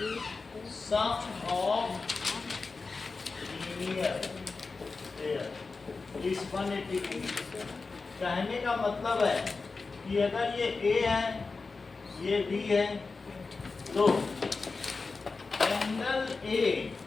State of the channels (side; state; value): right; quieter; 4.2 dB